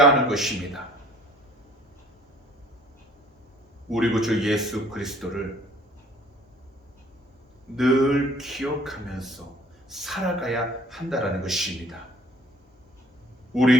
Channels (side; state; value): both; normal; correlation 0.55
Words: 하는 것입니다. 우리 구주 예수 그리스도를 늘 기억하면서 살아가야 한다는 것입니다.